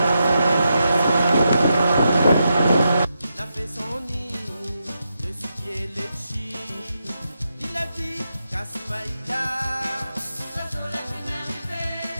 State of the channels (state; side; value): inverted; both; correlation -0.85